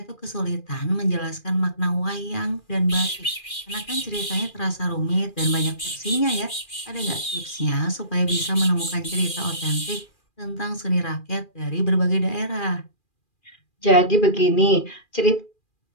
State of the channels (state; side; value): late; right; 2.4 ms